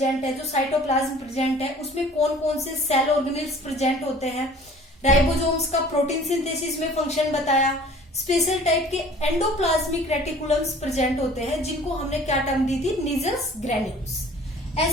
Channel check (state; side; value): normal; both; correlation 0.49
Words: है, जो साइटोप्लाज्म प्रेजेंट है, उसमें कौन कौन से सेल ऑर्गेनेल्स प्रेजेंट होते हैं। राइबोसोम्स का प्रोटीन सिंथेसिस में फंक्शन बताया। स्पेशल टाइप के एंडोप्लाज्मिक रेटिकुलम्स प्रेजेंट होते हैं, जिनको हमने क्या टर्म दी थी, निजस ग्रेन्यूल्स।